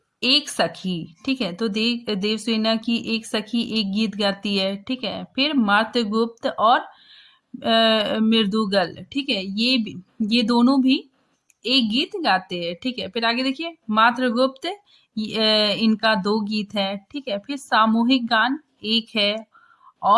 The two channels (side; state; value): both; identical; correlation 1.00